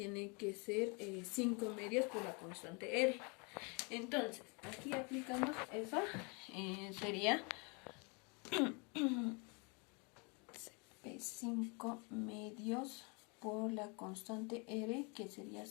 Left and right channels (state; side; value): quieter; right; 32.4 dB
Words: que ser 5 medios por la constante R. Entonces, aquí aplicamos eso, sería 5 medios por la constante R, que sería